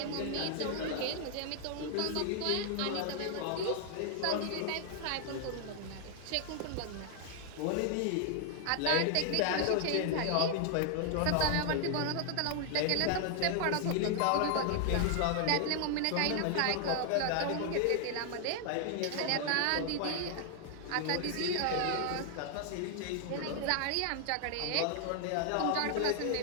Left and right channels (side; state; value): both; different; correlation 0.00